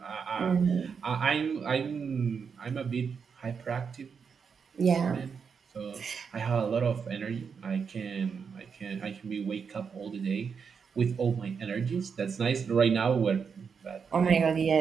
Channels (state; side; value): quieter; left; 6.2 dB